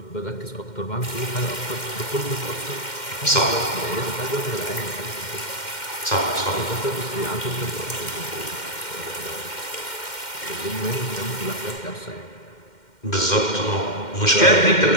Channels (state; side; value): late; right; 2.1 ms